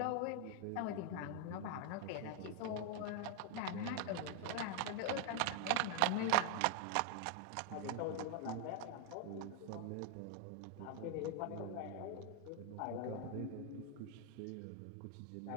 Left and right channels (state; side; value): different; both; correlation 0.00